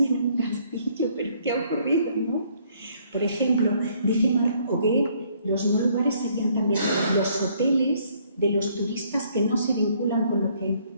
un castillo, pero ¿qué ha ocurrido, no? Por ejemplo, dice Marc Augé, los no lugares serían también los hoteles de los turistas que no se vinculan con lo que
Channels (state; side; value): inverted; both; correlation -0.65